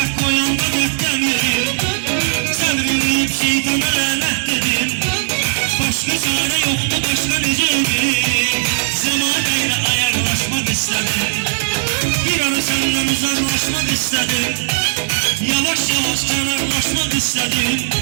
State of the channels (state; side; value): silent; left; 64 dB below the other